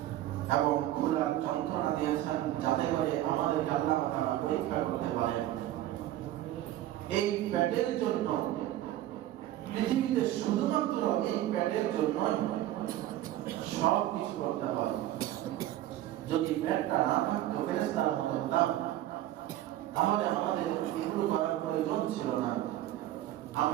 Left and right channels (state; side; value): quieter; left; 13.8 dB